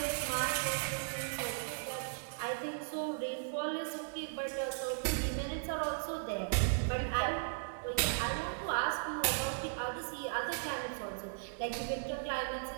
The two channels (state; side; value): silent; left; digital silence